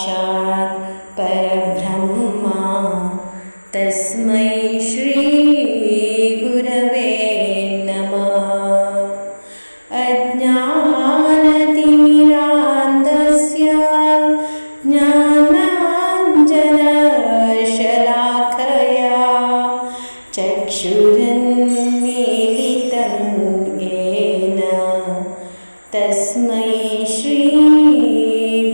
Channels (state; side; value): inverted; both; correlation -1.00